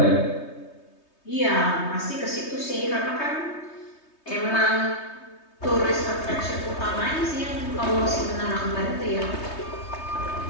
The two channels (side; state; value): right; late; 3.2 ms